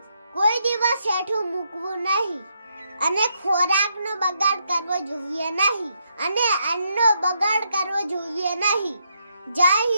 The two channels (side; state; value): both; inverted; correlation -0.78